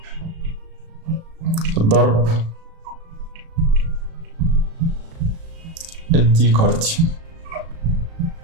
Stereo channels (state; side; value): late; left; 36 ms